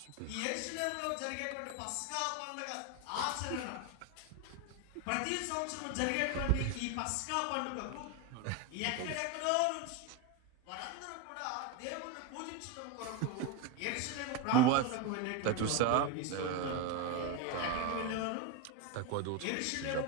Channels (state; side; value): different; both; correlation 0.02